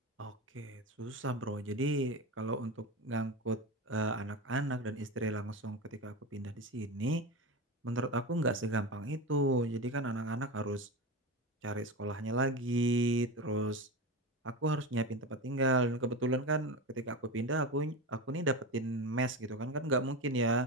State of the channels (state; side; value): normal; both; correlation 0.22